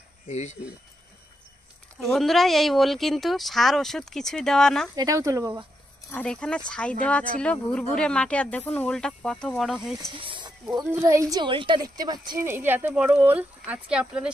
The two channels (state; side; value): normal; both; correlation 0.83